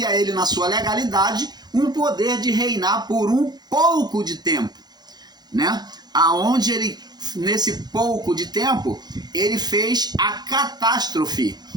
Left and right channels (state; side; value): late; left; 0.20 ms